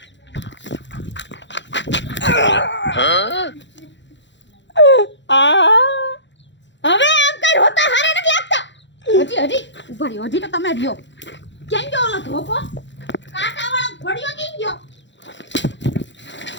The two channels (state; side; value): late; right; 0.53 ms